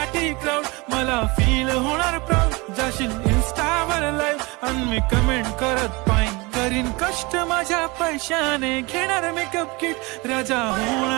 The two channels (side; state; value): left; quieter; 25.2 dB